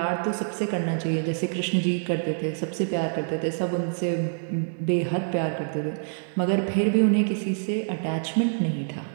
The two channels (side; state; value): left; silent; digital silence